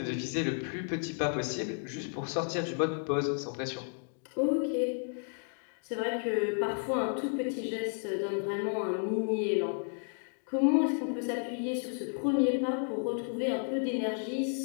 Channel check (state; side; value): silent; right; 56 dB below the other